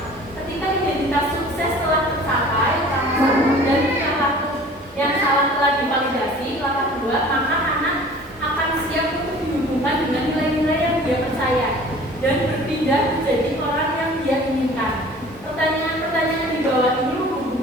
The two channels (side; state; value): both; normal; correlation 0.46